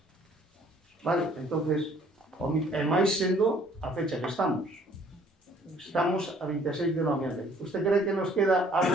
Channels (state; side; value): normal; both; correlation 0.59